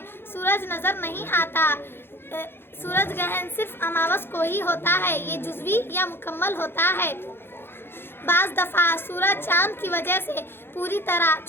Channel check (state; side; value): late; right; 0.11 ms